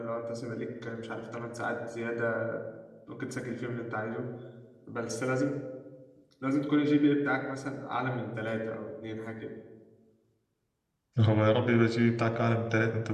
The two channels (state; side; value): identical; both; correlation 1.00